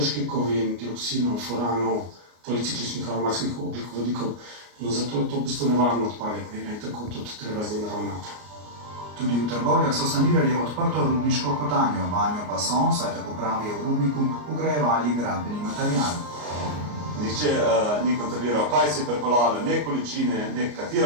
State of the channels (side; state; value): left; late; 33 ms